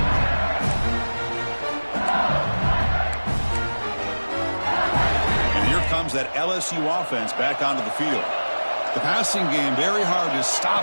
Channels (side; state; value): both; inverted; correlation -1.00